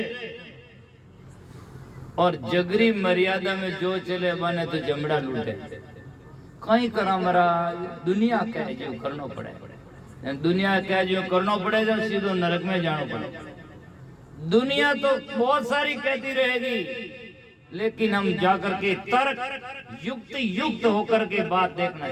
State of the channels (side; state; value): both; identical; correlation 1.00